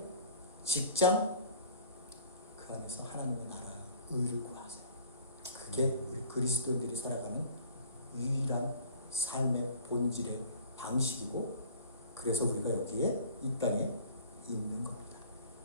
직장 그 안에서 하나님의 나라 의를 구하세요. 그게 우리 그리스도인들이 살아가는 유일한 삶의 본질의 방식이고 그래서 우리가 여기에 이 땅에 있는 겁니다.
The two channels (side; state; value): both; inverted; correlation -0.48